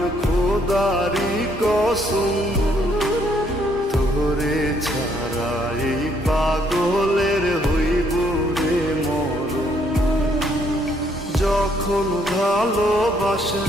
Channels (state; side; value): normal; both; correlation 0.69